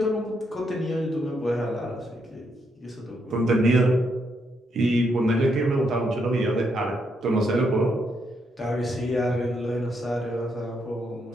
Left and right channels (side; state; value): both; normal; correlation 0.78